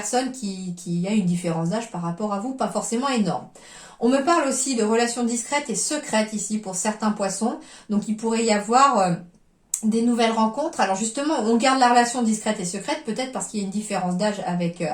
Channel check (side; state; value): both; identical; correlation 1.00